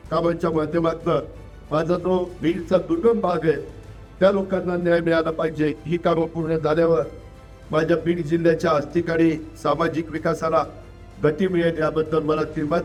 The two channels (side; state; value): both; identical; correlation 1.00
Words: कामांच्या माध्यमातून माझा जो बीडचा दुर्गम भाग आहे त्या लोकांना न्याय मिळाला पाहिजे। ही कामं पूर्ण झाल्यावर माझ्या बीड जिल्ह्याच्या आर्थिक आणि सामाजिक विकासाला गती मिळेल याबद्दल मला